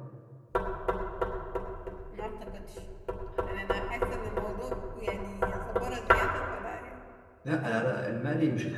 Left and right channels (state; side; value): identical; both; correlation 1.00